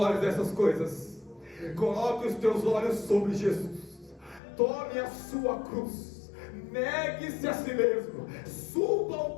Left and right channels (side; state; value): right; drops out; at 4.4 s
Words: dessas coisas, coloque os teus olhos sobre Jesus. Tome a sua cruz, negue-se a si mesmo, suba ao